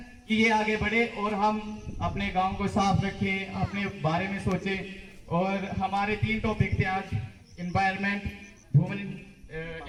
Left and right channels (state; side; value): identical; both; correlation 1.00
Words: कि ये आगे बढ़े और हम अपने गांव को साफ रखें, अपने बारे में सोचें। और हमारे 3 टॉपिक थे आज, environment, women